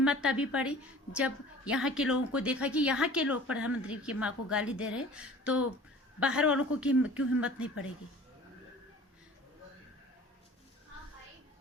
तभी पड़ी जब यहाँ के लोगों को देखा कि यहाँ के लोग प्रधानमंत्री की माँ को गाली दे रहे, तो बाहर वालों को क्यों हिम्मत नहीं पड़ेगी।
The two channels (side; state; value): both; normal; correlation 0.45